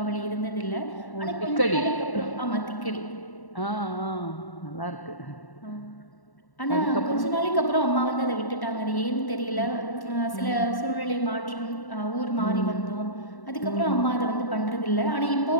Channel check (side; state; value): right; late; 1.1 ms